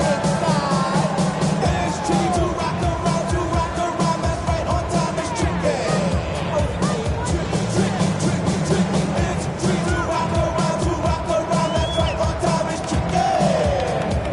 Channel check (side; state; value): both; identical; correlation 1.00